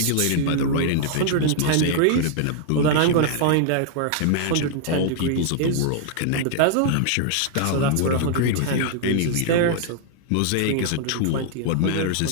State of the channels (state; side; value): different; both; correlation -0.01